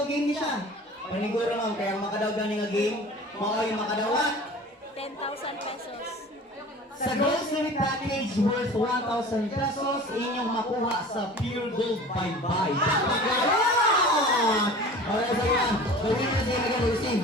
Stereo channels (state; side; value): normal; both; correlation 0.41